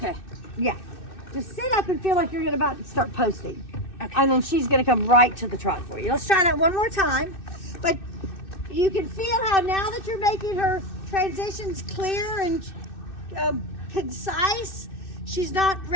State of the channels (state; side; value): late; right; 2.6 ms